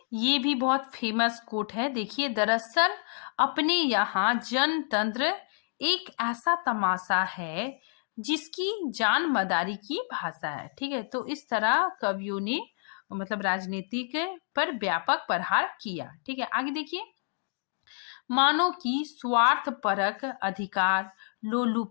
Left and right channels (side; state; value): right; silent; 59 dB below the other